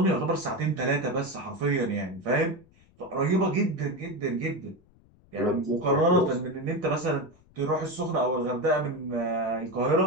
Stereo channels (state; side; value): noise; left; rumble, 29 dB below the sound